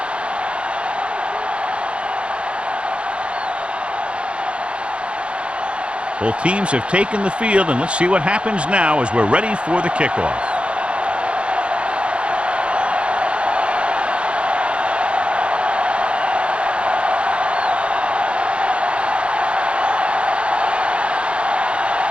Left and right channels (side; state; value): left; late; 0.058 ms